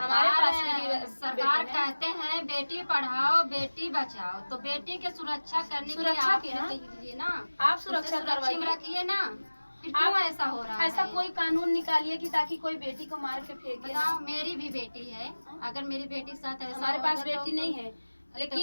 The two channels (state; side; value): inverted; both; correlation -1.00